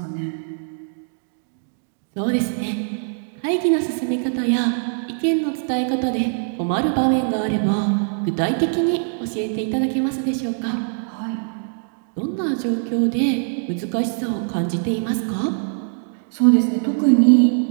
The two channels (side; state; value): left; silent; digital silence